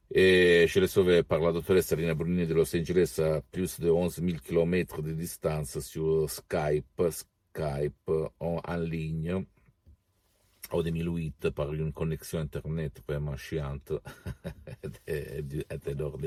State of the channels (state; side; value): identical; both; correlation 1.00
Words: Et je l'ai sauvé par la doctoresse Serena Brunini de Los Angeles à plus de 11 000 km de distance sur Skype en ligne. En 2008, par une connexion Internet vraiment chiante et